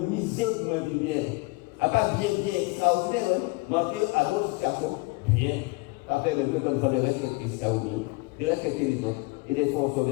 miser pour me bien. À pas bien, extraordinaire, ouais. Manquer à d'autres situations, bien. Après, le peuple de respecter ça aussi, de respecter les autres, et de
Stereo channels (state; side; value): quieter; right; 25.1 dB